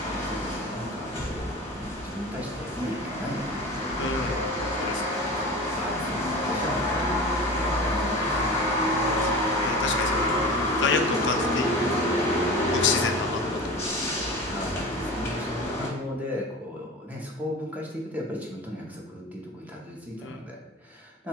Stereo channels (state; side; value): normal; both; correlation 0.33